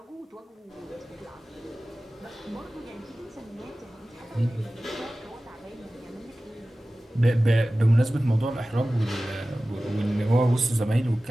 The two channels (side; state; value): both; normal; correlation 0.96